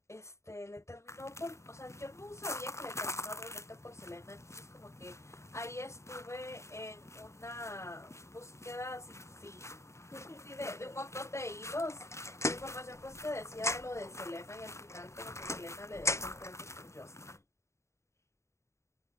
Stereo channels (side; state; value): right; late; 0.14 ms